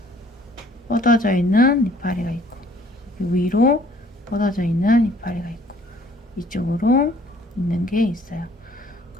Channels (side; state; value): both; normal; correlation 0.58